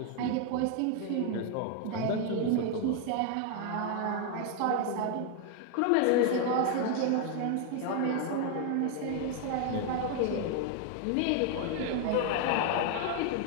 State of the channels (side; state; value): both; different; correlation 0.00